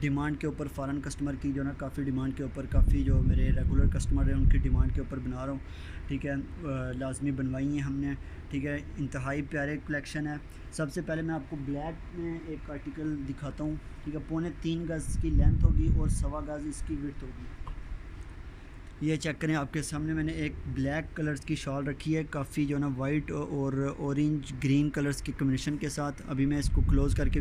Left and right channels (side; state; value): both; identical; correlation 1.00